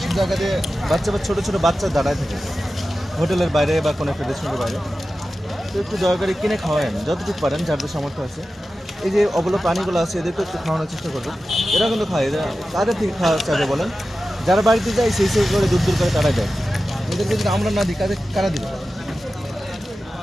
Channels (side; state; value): both; normal; correlation 0.94